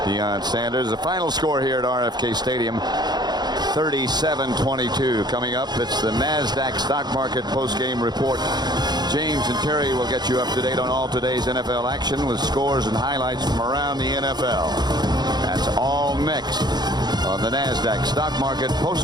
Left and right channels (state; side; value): late; left; 0.20 ms